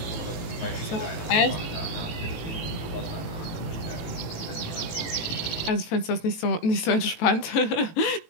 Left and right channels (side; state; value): right; late; 18 ms